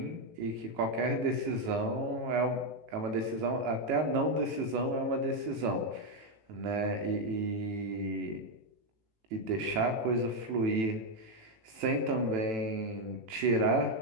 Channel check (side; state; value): left; late; 18 ms